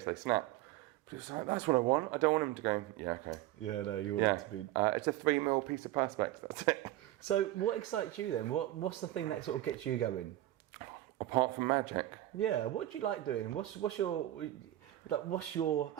they snap. But it's like, that's what I want. I don't want them to go, yeah, okay. Yeah, no, you want it to be. It's a 3mm piece of perspex, that's it. So what excites you then? What's the thing that sort of gets you going? Apart from magic. Yeah, what do you like doing? What's your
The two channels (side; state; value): left; quieter; 14.9 dB